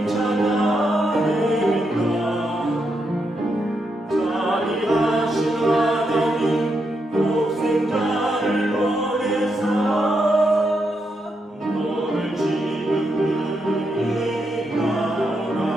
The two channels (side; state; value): both; normal; correlation 0.82